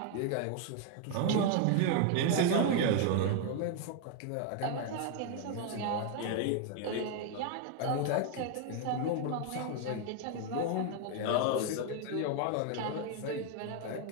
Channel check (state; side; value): different; both; correlation 0.01